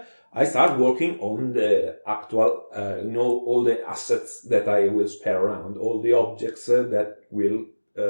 I start working on the actual, all the assets that I will spare around, all the objects that will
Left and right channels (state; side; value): inverted; both; correlation -1.00